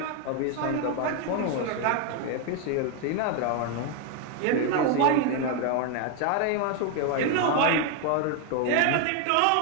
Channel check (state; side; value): different; both; correlation 0.01